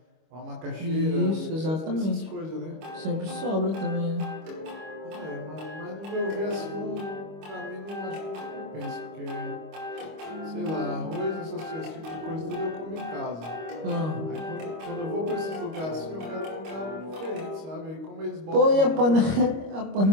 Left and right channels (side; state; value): left; late; 25 ms